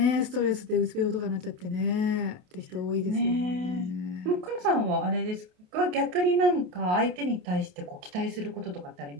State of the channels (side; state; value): left; late; 28 ms